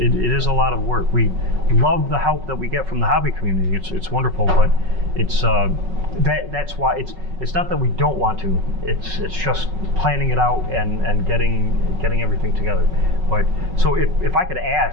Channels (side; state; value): left; late; 5.4 ms